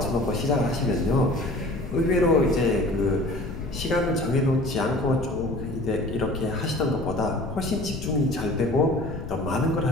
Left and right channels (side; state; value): left; noise; rumble, 8 dB below the sound